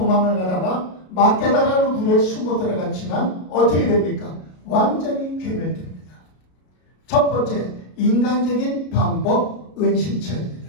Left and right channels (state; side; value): late; right; 33 ms